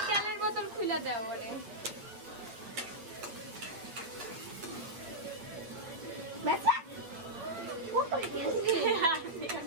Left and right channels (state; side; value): late; left; 8.7 ms